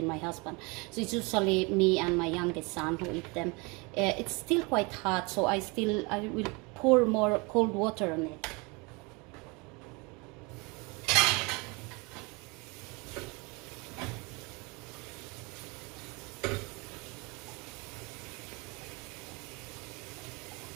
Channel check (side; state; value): left; quieter; 28.2 dB